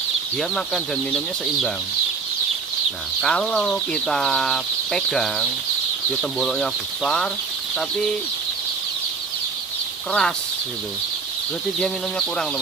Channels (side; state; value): left; quieter; 4.8 dB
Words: dia makan dan minumnya seimbang. Nah kalau kita pegang dia temboloknya besar tapi keras gitu, berarti dia minumnya kurang